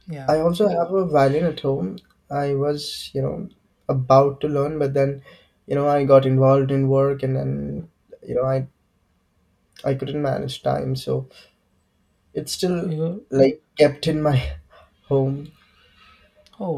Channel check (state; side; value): identical; both; correlation 1.00